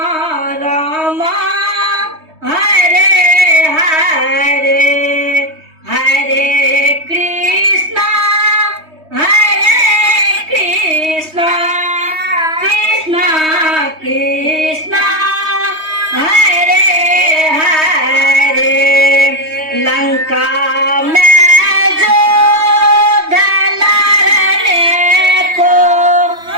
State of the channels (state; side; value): late; left; 3.2 ms